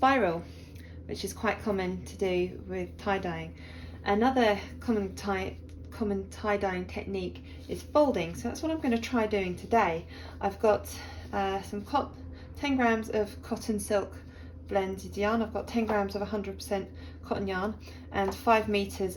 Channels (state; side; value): identical; both; correlation 1.00